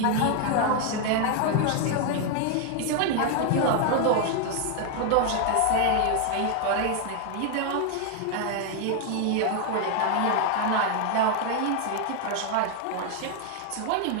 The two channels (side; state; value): both; different; correlation 0.00